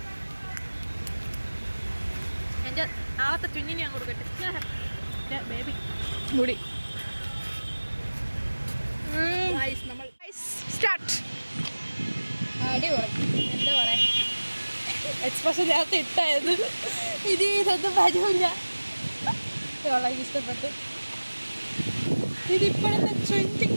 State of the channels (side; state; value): both; inverted; correlation -1.00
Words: എൻ്റെ നാളത്തെ ചുഞ്ഞിന് ഞാൻ കൊടുക്കട്ടെ ബേബി മുടി. നമ്മൾ സ്റ്റാർട്ട്. അടിപൊളി. എന്താ പറയാ, എക്സ്പ്രഷൻ നേരത്തെ ഇട്ടായത് ഇനി ഇതൊന്നും വരൂല. വളരെ ഇഷ്ടപ്പെട്ട്. ഇതിപ്പോഴത്തെ